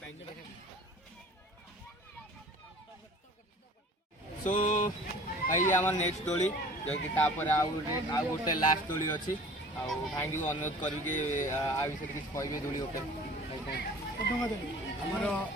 ପାଇଁ सो भाई आम नेक्स्ट दोली जो कि आउ गोटे लास्ट दोली अच्छी भाई को अनुरोध करके आ विषय किसी कहे दोली ଆମର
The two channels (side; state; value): both; normal; correlation 0.46